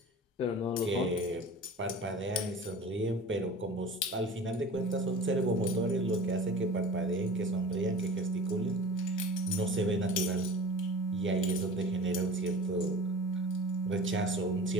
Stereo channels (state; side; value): normal; both; correlation 0.39